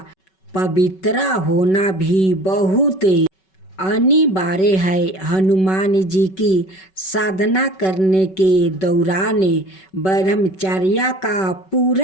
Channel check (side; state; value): right; late; 5.3 ms